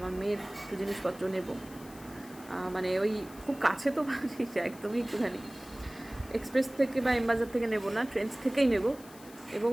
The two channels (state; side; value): noise; left; hiss, 20 dB below the sound